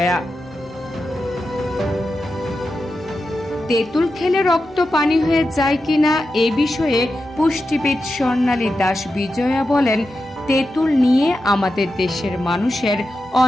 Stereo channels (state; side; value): normal; both; correlation 0.90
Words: তেঁতুল খেলে রক্ত পানি হয়ে যায় কিনা এ বিষয়ে পুষ্টিবিদ স্বর্ণালী দাস বিজয়া বলেন, তেঁতুল নিয়ে আমাদের দেশের মানুষের